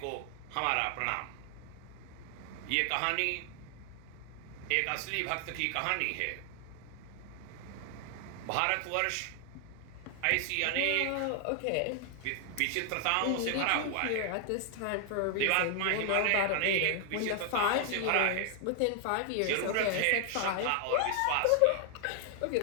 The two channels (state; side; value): different; both; correlation 0.00